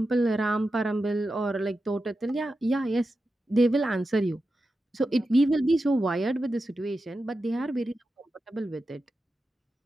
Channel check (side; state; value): both; normal; correlation 0.91